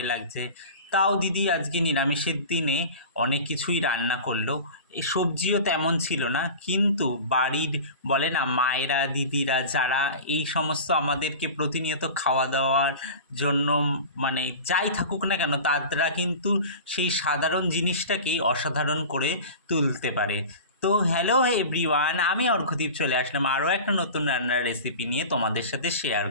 লাগছে। তাও দিদি আজকে নিরামিষের দিনে অনেক কিছুই রান্না করলো। এই সবজিও তেমন ছিল না, কিন্তু বাড়ির বলে না মায়েরা দিদিরা যারা এই সমস্ত আমাদেরকে প্রতিনিয়ত খাওয়া দাওয়ার জন্য যাই থাকুক না কেন, তারা কিন্তু সেই সাধারণ জিনিসটাকেই অসাধারণ করে তুলতে পারে। তো হ্যালো এভরিওয়ান, আমি অর্ঘদীপ চলে আসলাম আরও একটা নতুন রান্নার রেসিপি নিয়ে তোমাদের সাথে শেয়ার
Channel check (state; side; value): inverted; both; correlation -0.34